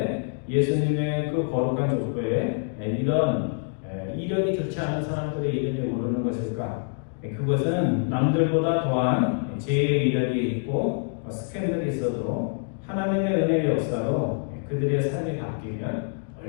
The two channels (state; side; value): silent; right; 61 dB below the other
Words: 예수님의 그 거룩한 족보에 이런 이력이 좋지 않은 사람들의 이름이 오르는 것일까? 그것은 남들보다 더한 죄의 이력이 있고 스캔들이 있어도 하나님의 은혜의 역사로 그들의 삶이 바뀌면